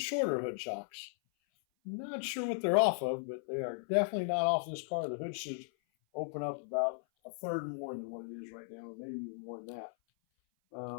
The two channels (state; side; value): silent; right; 54 dB below the other